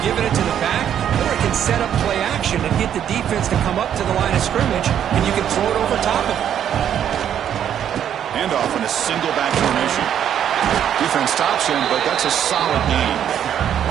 giving it to the back, or it can set up play action and get the defense to come up to the line of scrimmage, and you can throw it over top of them. Handoff in a single back formation. Defense stops him, but that's a solid game.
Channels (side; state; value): left; quieter; 9.6 dB